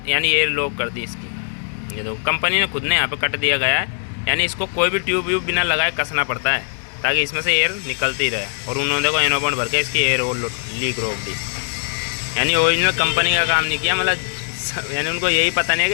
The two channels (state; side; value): silent; right; digital silence